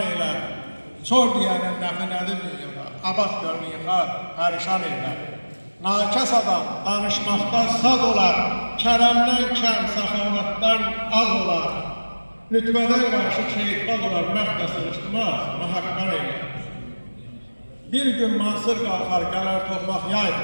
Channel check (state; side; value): inverted; both; correlation -1.00